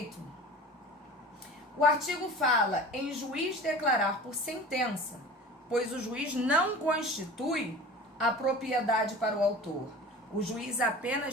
O artigo fala em juiz declarar por sentença, pois o juiz não constitui a propriedade para o autor. O juiz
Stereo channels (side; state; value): both; normal; correlation 0.38